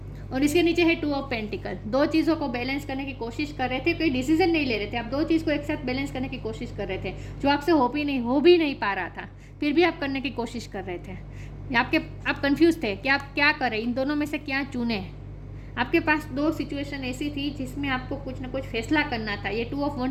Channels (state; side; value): identical; both; correlation 1.00